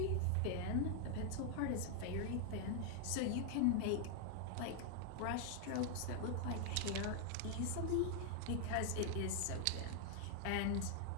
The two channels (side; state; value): both; different; correlation 0.00